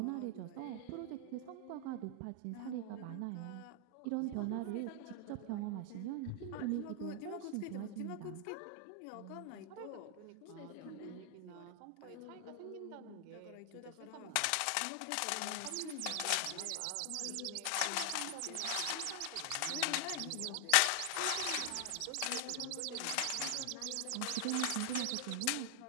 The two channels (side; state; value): both; different; correlation 0.00